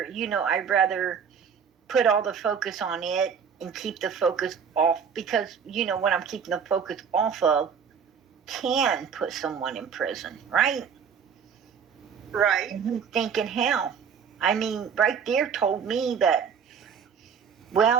put all the focus on it and keep the focus off, because, what I'm keeping the focus off of can put someone in prison, right? Right. And he's thinking, hell, I mean, right there told me that,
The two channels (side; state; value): left; quieter; 6.9 dB